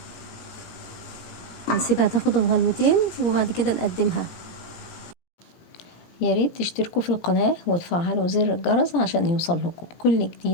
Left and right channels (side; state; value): right; late; 17 ms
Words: هنسيبها تاخد الغلوتين وبعد كده نقدمها. يا ريت تشتركوا في القناة وتفعلوا زر الجرس عشان يوصل لكم كل